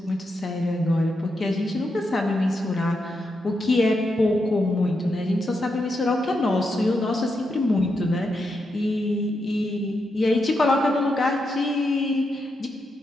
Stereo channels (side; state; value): both; normal; correlation 0.84